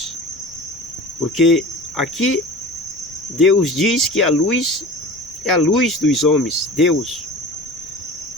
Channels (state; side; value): noise; left; rumble, 28 dB below the sound